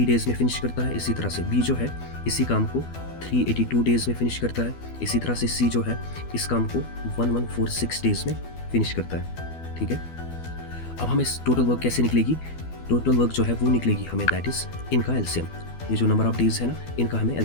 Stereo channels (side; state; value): right; late; 12 ms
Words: डेज में फिनिश करता है, इसी तरह से बी जो है इसी काम को 382 डेज में फिनिश करता है, इसी तरह से सी जो है इस काम को 1146 डेज में फिनिश करता है। ठीक है, अब हमें टोटल वर्क कैसे निकलेगी, टोटल वर्क जो है वो निकलेगी हमें दैट इज इनका एलसीएम। ये जो नंबर ऑफ डेज है ना, इनका हमें